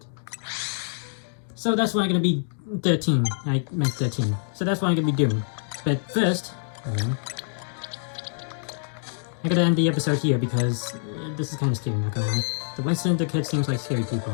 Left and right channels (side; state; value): right; silent; digital silence